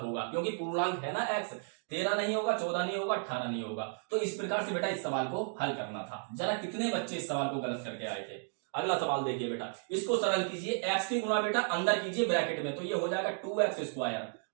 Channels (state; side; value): silent; left; 55 dB below the other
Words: क्योंकि पूर्णांक है ना x। 13 नहीं होगा, 14 नहीं होगा, 18 नहीं होगा। तो इस प्रकार से बेटा इस सवाल को हल करना था। जरा कितने बच्चे इस सवाल को गलत करके आए थे? अगला सवाल देखिए बेटा, इसको सरल कीजिए। x की गुणा बेटा अंदर कीजिए ब्रैकेट में, तो ये हो जाएगा 2x स्क्वायर